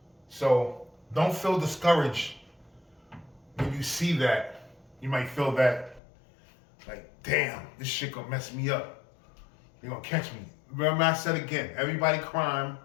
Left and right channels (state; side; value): drops out; right; at 6.0 s